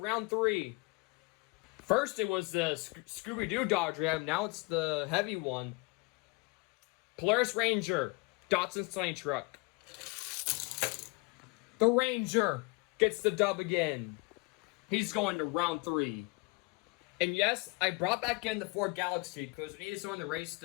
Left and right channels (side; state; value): right; quieter; 27.4 dB